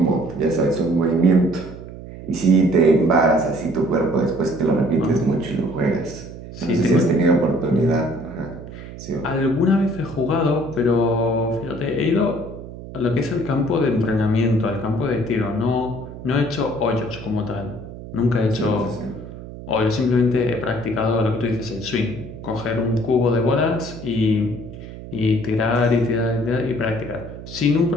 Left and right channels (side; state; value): right; noise; hum, 13 dB below the sound